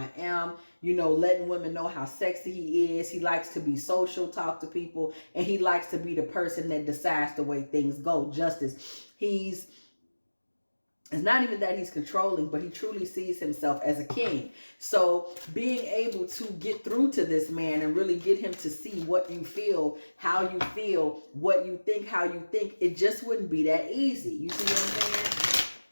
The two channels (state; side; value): inverted; both; correlation -1.00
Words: am, you know, letting women know how sexy he is. He likes to be social, talk to people, and he likes to be the person that decides the way things go. Justice. It's not even that he's controlling, but he truly sees himself as a king. So being able to get through to this man and really get him to see what you feel, how you feel, what you think, how you think, it just wouldn't be that easy. You see what